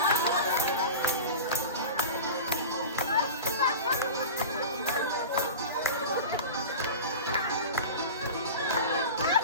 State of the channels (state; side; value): inverted; both; correlation -0.31